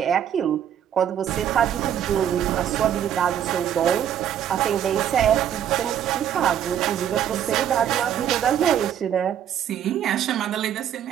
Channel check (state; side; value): quieter; left; 9.8 dB